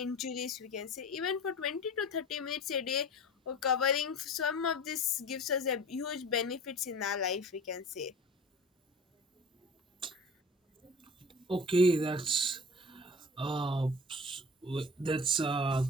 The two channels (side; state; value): both; normal; correlation 0.39